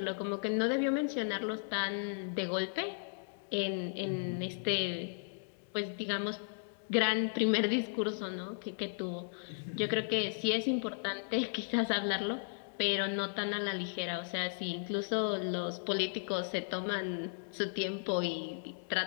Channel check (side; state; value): right; silent; digital silence